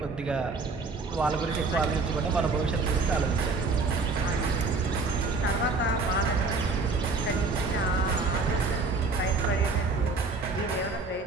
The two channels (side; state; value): left; quieter; 3.9 dB